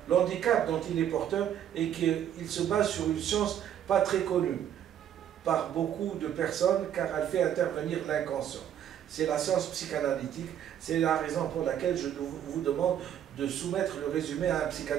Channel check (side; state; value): left; quieter; 10.1 dB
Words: l'handicap dont il est porteur est qu'il se base sur une science pas très connue par beaucoup de personnes car elle fait intervenir l'inconscient. C'est la science psychanalytique, c'est la raison pour laquelle je vous demande de soumettre le résumé à un